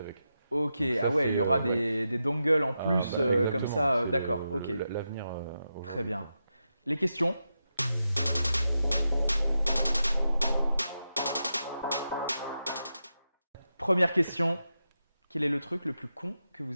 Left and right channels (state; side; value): inverted; both; correlation -0.88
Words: Ok, Ça, ah ouais, c'est, il y aura ouais. des dongles en plus comme Exactement, ça. c'est D'accord, ok. L'avenir. Très bien. Les questions? Première question. Quel est le truc le plus con que